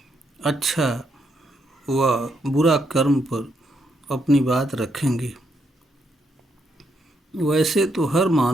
अच्छा व बुरा कर्म पर अपनी बात रखेंगे। वैसे तो हर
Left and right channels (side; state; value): both; normal; correlation 0.77